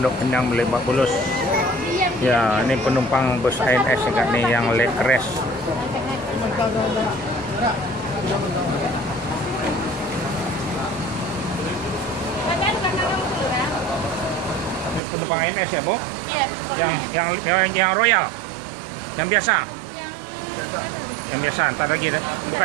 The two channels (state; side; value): drops out; left; at 15.0 s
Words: Pinang Lebak Bulus. Ya, ini penumpang bus ANS nih yang leg rest. Ini penumpang ANS ya, Bu? Iya. Yang Royal. Yang biasa. Yang biasa, entar lagi deh.